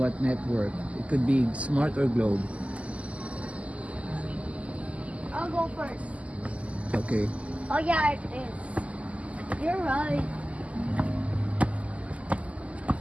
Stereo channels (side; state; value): left; late; 0.065 ms